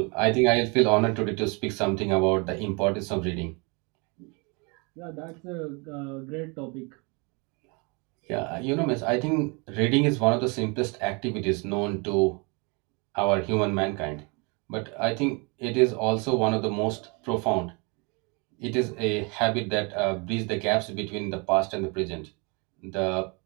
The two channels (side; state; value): left; quieter; 30.8 dB